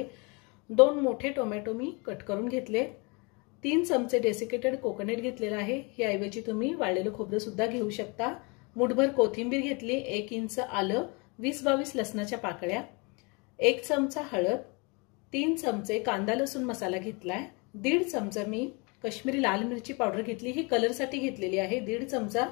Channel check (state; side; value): quieter; right; 30.3 dB